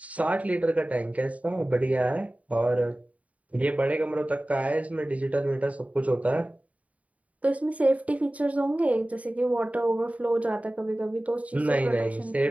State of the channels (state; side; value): late; left; 0.068 ms